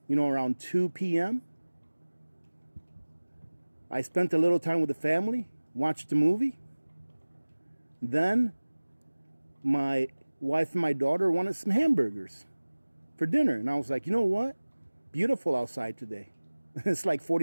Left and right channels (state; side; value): inverted; both; correlation -1.00